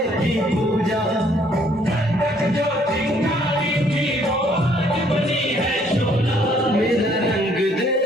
की पूजा, जो चिंगारी थी वो आज बनी है चोला. मेरा रंग दे,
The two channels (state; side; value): normal; both; correlation 0.64